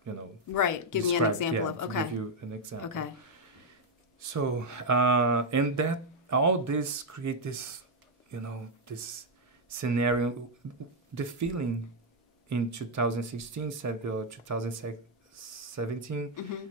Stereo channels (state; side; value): normal; both; correlation 0.00